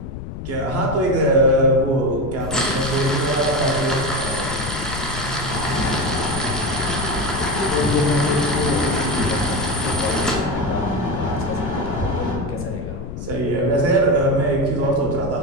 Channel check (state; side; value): noise; left; rumble, 8 dB below the sound